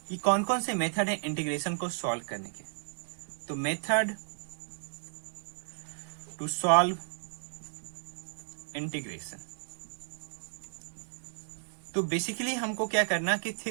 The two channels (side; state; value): left; silent; 56 dB below the other